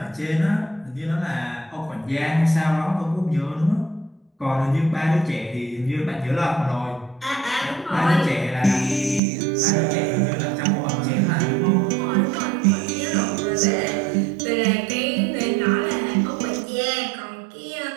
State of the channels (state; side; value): drops out; left; at 9.2 s